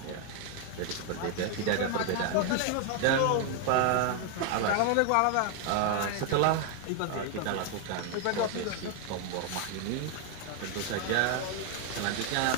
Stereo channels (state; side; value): different; both; correlation 0.01